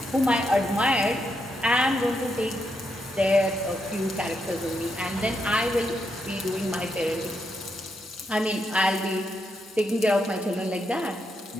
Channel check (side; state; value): both; normal; correlation 0.81